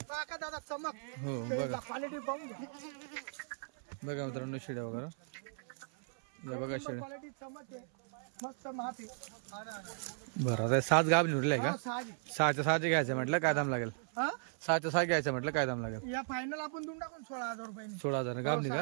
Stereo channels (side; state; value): left; silent; 53 dB below the other